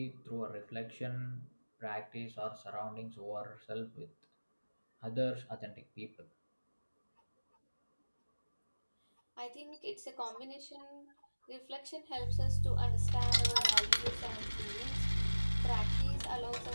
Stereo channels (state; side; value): inverted; both; correlation -1.00